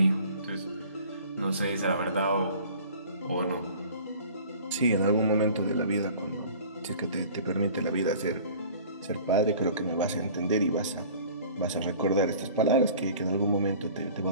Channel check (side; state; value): both; inverted; correlation -0.47